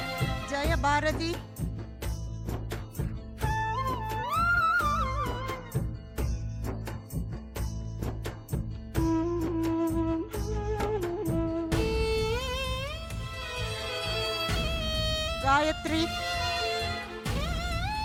Jaya Bharati, 3,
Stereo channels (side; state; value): both; identical; correlation 1.00